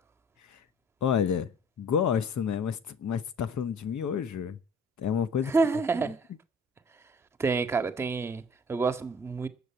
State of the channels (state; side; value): normal; both; correlation 0.49